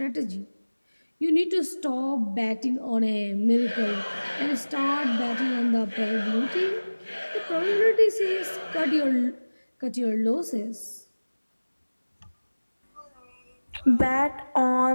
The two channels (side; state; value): both; inverted; correlation -1.00